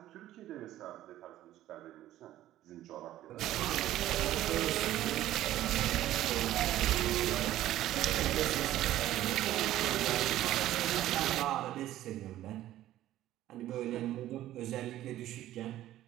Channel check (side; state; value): left; quieter; 13.8 dB